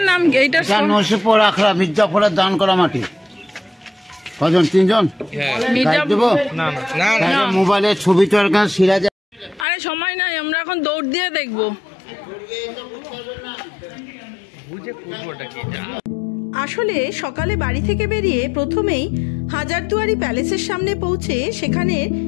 নাম কি? এইটা নসিপুর আখড়া, মির্জাপুরের দান করা মাটি। কজন? 3 জন। মোবাইলে ছবি তো সিরাজ। আরে সময় নাই, আমরা এখন দৌড় দিয়ে দেখবো। আসলে সকালে বাড়ি থেকে বেরিয়ে প্রথমেই হাজারদুয়ারি প্যালেসের সামনে পৌঁছে সেখানে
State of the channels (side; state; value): right; drops out; at 9.7 s